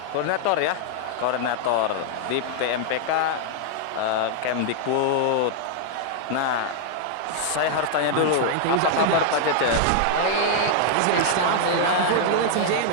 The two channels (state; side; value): different; both; correlation -0.01